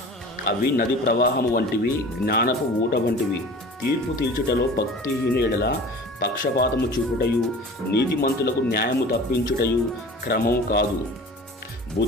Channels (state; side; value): normal; both; correlation 0.40